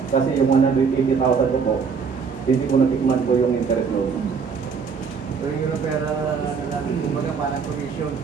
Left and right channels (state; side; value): quieter; left; 5.7 dB